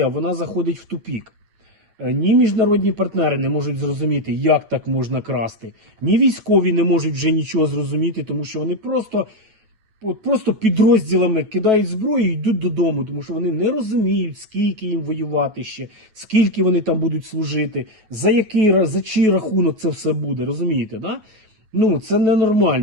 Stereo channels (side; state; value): left; late; 9.2 ms